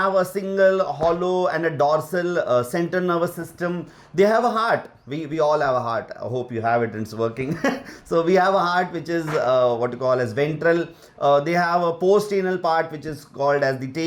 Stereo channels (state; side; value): identical; both; correlation 1.00